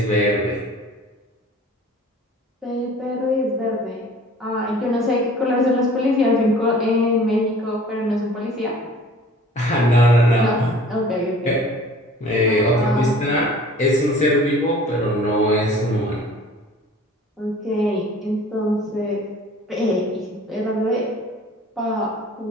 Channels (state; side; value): normal; both; correlation 0.48